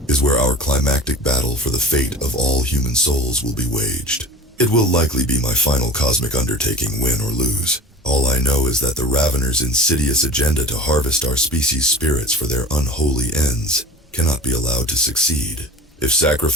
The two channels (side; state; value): both; normal; correlation 0.37